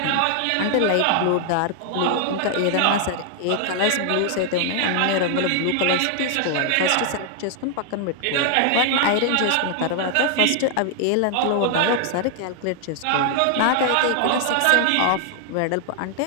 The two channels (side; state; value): both; different; correlation 0.00